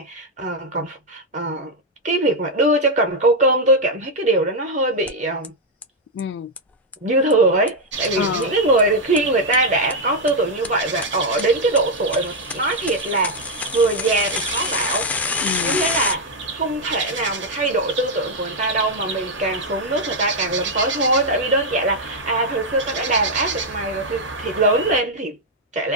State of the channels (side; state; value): both; normal; correlation 0.00